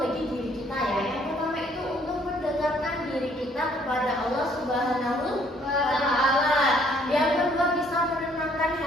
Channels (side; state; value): both; normal; correlation 0.63